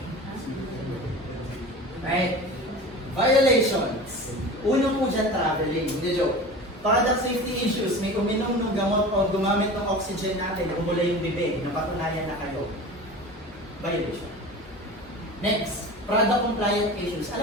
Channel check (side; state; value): both; normal; correlation 0.35